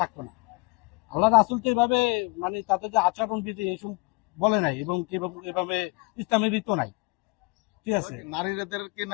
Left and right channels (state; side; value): quieter; right; 27.2 dB